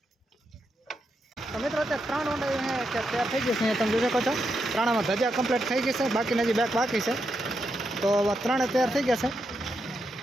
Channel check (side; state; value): both; normal; correlation 0.83